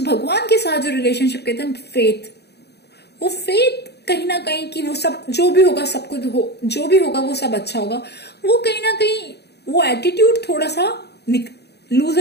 भगवान के साथ जो रिलेशनशिप कहते हैं फेथ, वो फेथ कहीं ना कहीं कि वो सब जो भी होगा, सब कुछ जो भी होगा वो सब अच्छा होगा, वो कहीं ना कहीं वो एटीट्यूड थोड़ा सा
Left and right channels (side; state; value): right; late; 0.48 ms